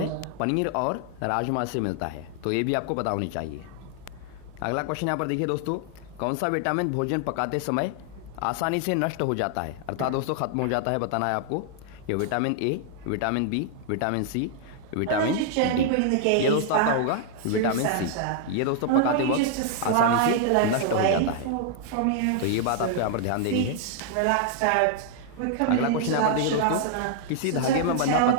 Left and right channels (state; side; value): different; both; correlation 0.00